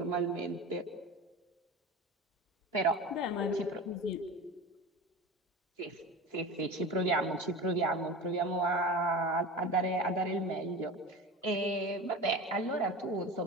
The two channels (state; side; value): normal; both; correlation 0.31